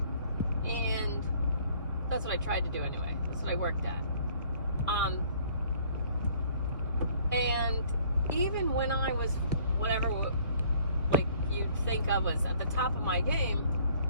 And that's what I tried to do anyway. That's what I worked at. And even when I was whatever, like you'd think I was at the top of my game,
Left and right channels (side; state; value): both; inverted; correlation -0.58